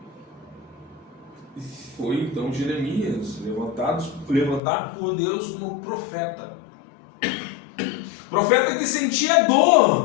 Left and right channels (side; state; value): right; drops out; at 4.6 s